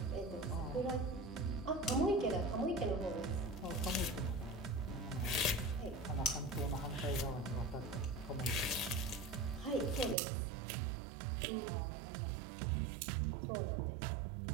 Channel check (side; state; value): left; drops out; at 10.2 s